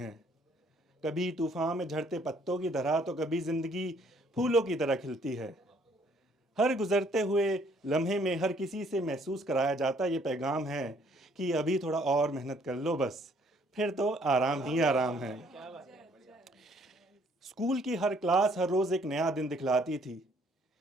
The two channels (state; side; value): normal; both; correlation 0.63